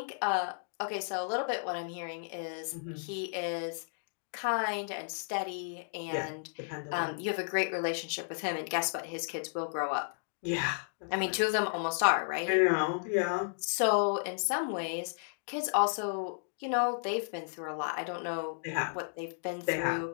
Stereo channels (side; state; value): right; silent; digital silence